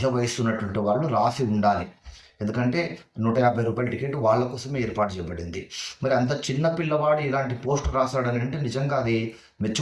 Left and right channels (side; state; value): both; identical; correlation 1.00